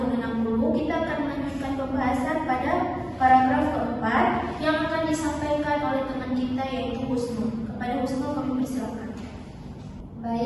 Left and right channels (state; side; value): identical; both; correlation 1.00